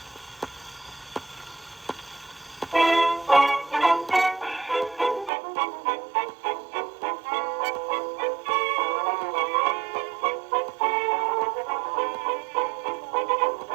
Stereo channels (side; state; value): left; drops out; at 5.3 s